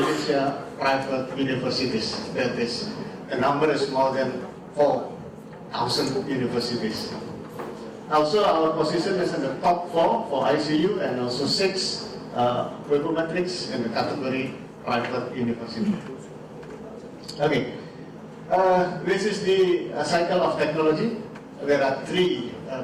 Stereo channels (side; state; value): both; identical; correlation 1.00